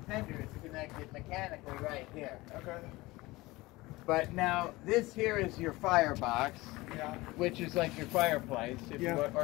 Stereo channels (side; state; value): right; quieter; 20.7 dB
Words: tender is connected mechanically right here. Okay. But now this here is your firebox, Yeah. which is like your fireplace, if Yeah. you want,